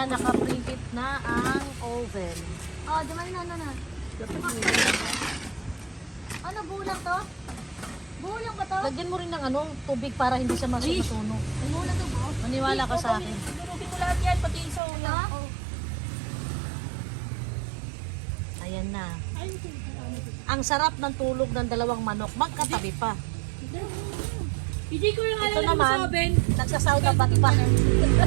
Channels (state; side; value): drops out; left; at 14.8 s